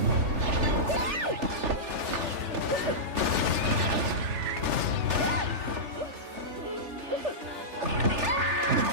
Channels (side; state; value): left; late; 3.4 ms